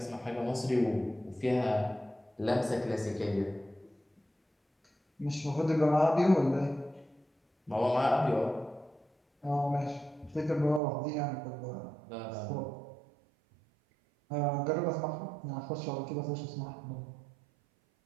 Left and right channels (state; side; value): drops out; left; at 10.8 s